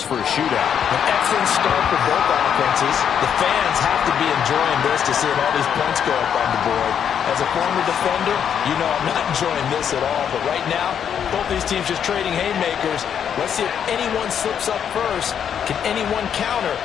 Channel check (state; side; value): quieter; right; 8.4 dB